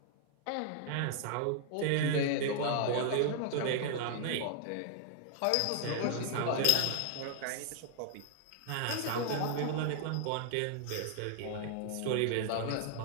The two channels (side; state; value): both; different; correlation 0.00